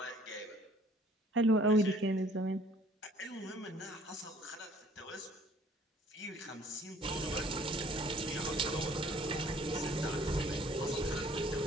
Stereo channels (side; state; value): both; normal; correlation 0.56